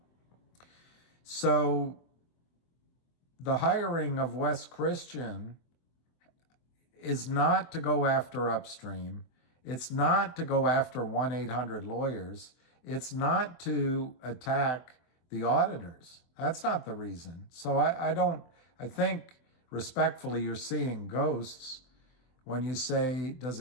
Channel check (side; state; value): right; late; 24 ms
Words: So the hiring of Wes Christian is not to go after Upstream. It's not to go after 1-800 lawyers. It's not to attack the auditors. That's not the reason. So I think respectfully you're seeing ghosts when you say, does